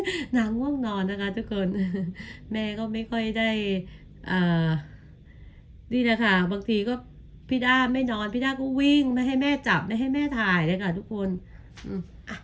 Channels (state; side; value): identical; both; correlation 1.00